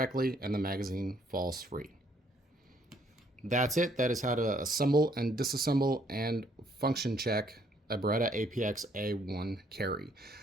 and the magazine falls free. That's it. That is how to assemble and disassemble and function check a Beretta APX A1 carry.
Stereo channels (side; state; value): both; normal; correlation 0.67